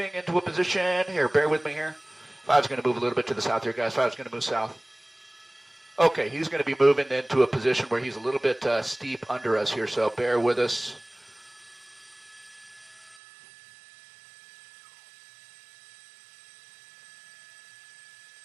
into a position here. Bear with me here. Five's going to move a little bit to the south here, guys. Five's going to move south. Okay, he's going to be moving into a position where he's a little bit steep under us here, so bear with us.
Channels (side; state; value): left; drops out; at 13.2 s